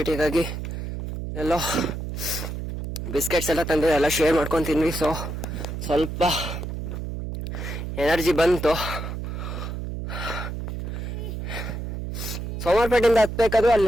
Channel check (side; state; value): right; noise; hum, 5 dB below the sound